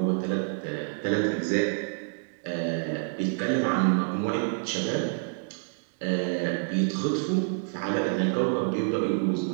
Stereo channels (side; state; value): left; silent; digital silence